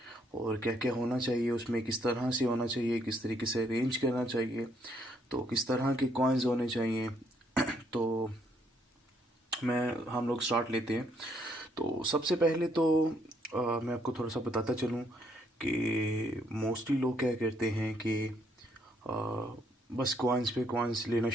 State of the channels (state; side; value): normal; both; correlation 0.71